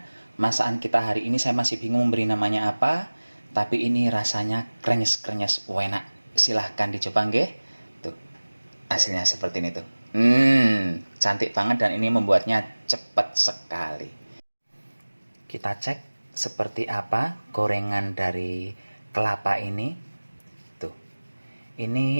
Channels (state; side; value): inverted; both; correlation -1.00